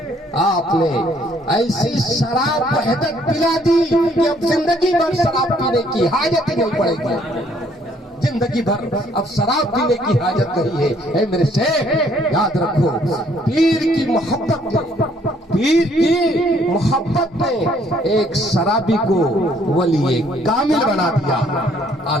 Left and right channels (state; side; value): normal; both; correlation 0.64